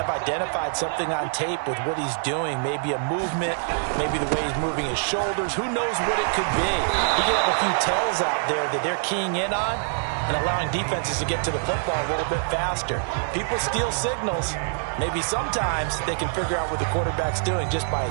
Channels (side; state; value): left; silent; digital silence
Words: identified something on tape with what he's doing. Maybe a movement, maybe the way he's moving his shoulders. Who knows what it could be? He could have a few tells out there that they're keying in on and allowing defenses to get to the football a little bit faster. People steal signals. Maybe sometimes they can figure out what the quarterback's doing just by